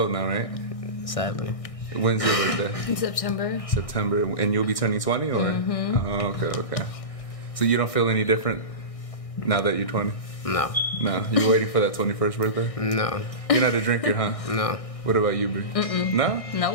now, right? Sadly. When's your birthday? In September. September, and you'll be turning 20, or? Mm-hmm. Oh, okay. So you don't feel any different now that you're 20? No. No. You waiting for that 21st birthday? No. You're not a drinker, huh? No. What about you, Bree? No?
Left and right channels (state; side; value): late; right; 1.6 ms